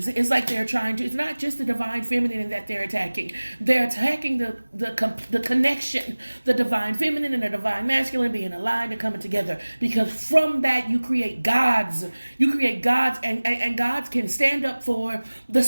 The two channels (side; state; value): both; inverted; correlation -1.00